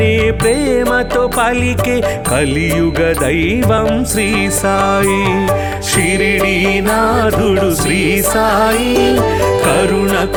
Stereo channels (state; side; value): identical; both; correlation 1.00